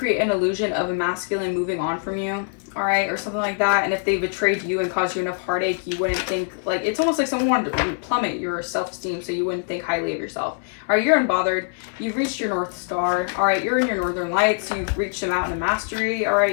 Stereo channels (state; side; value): silent; right; 63 dB below the other